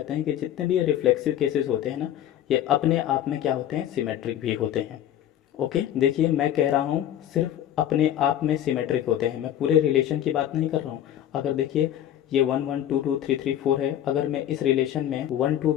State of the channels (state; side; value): quieter; right; 11.3 dB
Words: हैं कि जितने भी ये रिफ्लेक्सिव केसेस होते हैं ना, ये अपने आप में क्या होते हैं, सिमेट्रिक भी होते हैं। ओके, देखिए मैं कह रहा हूँ सिर्फ अपने आप में सिमेट्रिक होते हैं, मैं पूरे रिलेशन की बात नहीं कर रहा हूँ। अगर देखिए ये 1 1 2 2 3 3 4 है, अगर मैं इस रिलेशन में 1 2